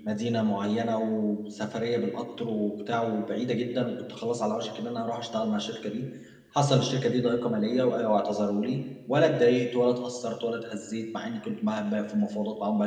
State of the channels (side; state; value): both; identical; correlation 1.00